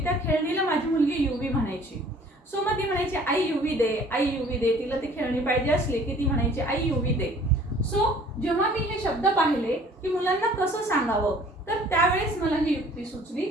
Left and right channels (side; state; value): both; normal; correlation 0.53